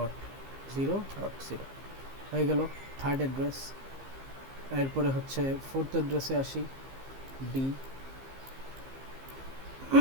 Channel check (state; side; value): late; left; 15 ms